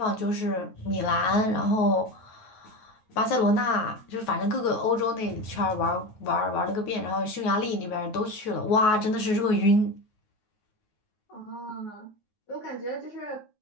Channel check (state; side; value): late; right; 9.4 ms